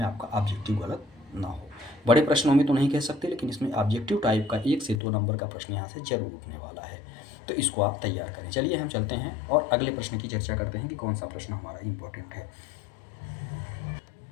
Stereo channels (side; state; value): right; drops out; at 5.0 s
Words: आपका ऑब्जेक्टिव गलत ना हो। बड़े प्रश्नों में तो नहीं कह सकते, लेकिन इसमें ऑब्जेक्टिव टाइप का 1 से 2 नंबर का प्रश्न यहाँ से जरूर उठने वाला है। तो इसको आप तैयार करें। चलिए हम चलते हैं और अगले प्रश्न की चर्चा करते हैं कि कौन सा प्रश्न हमारा इंपॉर्टेंट है।